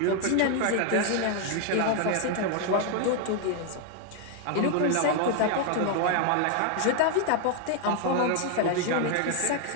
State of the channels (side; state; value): both; different; correlation 0.00